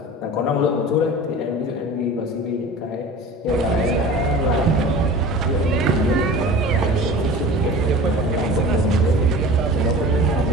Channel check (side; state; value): both; normal; correlation 0.38